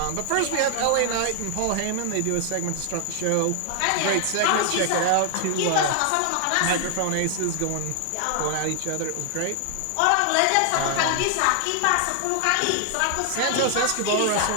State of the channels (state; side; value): different; both; correlation 0.00